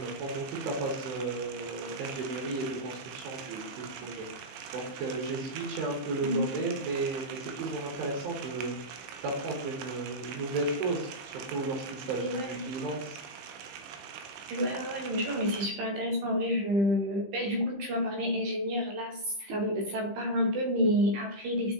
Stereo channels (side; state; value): left; late; 15 ms